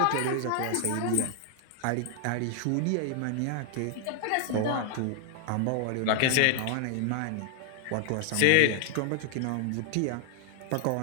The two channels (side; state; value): both; different; correlation 0.00